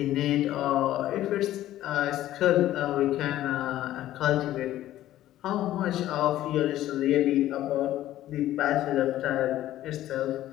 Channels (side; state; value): right; quieter; 13.8 dB